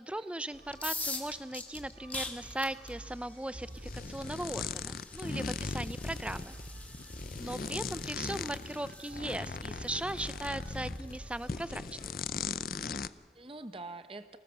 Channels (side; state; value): both; normal; correlation 0.65